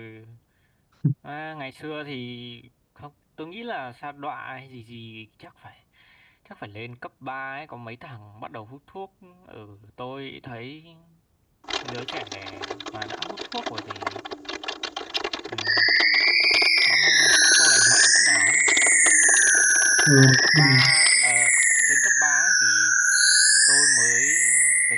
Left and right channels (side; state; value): both; identical; correlation 1.00